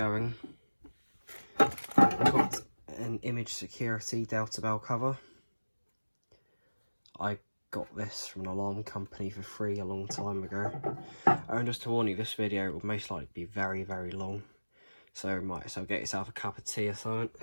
I've got an image security Delta Bell cover. I got this from an alarm company for free a long time ago. And just to warn you, this video will most likely be very, very long, so you might as well get yourself a cup of tea or something.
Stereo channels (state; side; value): inverted; both; correlation -1.00